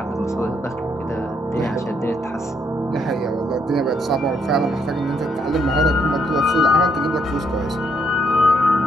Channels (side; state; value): both; normal; correlation 0.72